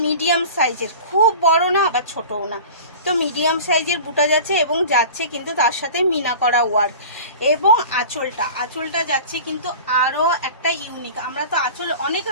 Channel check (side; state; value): both; inverted; correlation -0.37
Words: মিডিয়াম সাইজের, খুব বড় না আবার ছোটও না, তো মিডিয়াম সাইজের বুটা যাচ্ছে এবং যাচ্ছে কিন্তু তার সাথে মিনা করা ওয়ার্ক। এবং আঁচলটা যাচ্ছে কিন্তু আরও একটা ইউনিক। আমরা তো আঁচল অনেক